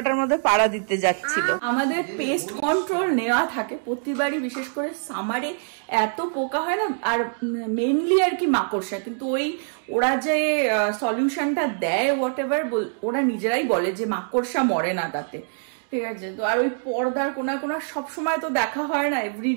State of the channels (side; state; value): left; silent; digital silence